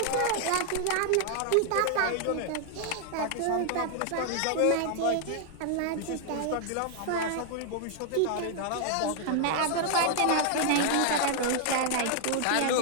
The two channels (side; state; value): both; different; correlation 0.00